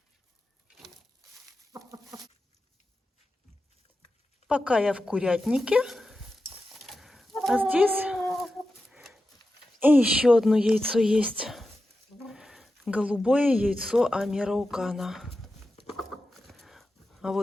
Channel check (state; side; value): normal; both; correlation 0.92